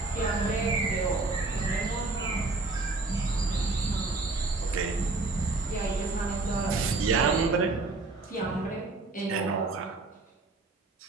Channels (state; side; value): quieter; left; 3.5 dB